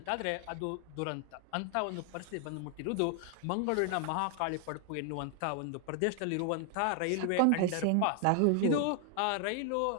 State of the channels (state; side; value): different; both; correlation 0.00